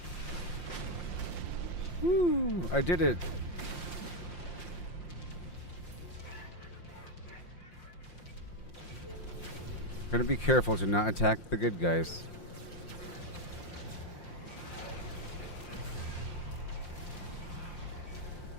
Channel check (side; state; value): right; late; 5.7 ms